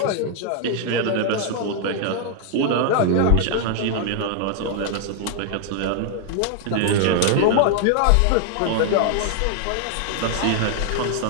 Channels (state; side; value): different; both; correlation 0.00